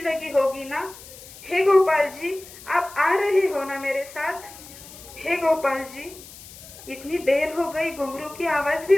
लगी होगी ना? हे गोपाल जी, आप आ रहे हो ना मेरे साथ? हे गोपाल जी, इतनी देर हो गई, घुंघरू की आवाज भी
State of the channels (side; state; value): left; noise; hiss, 18 dB below the sound